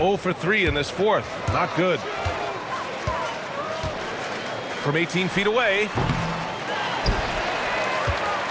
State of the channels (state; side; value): identical; both; correlation 1.00